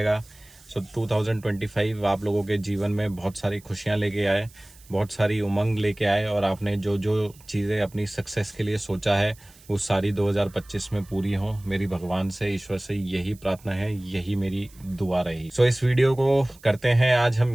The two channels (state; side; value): noise; right; hiss, 25 dB below the sound